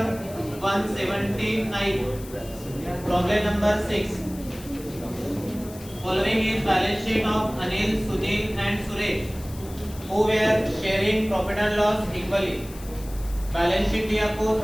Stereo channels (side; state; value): left; noise; hiss, 18 dB below the sound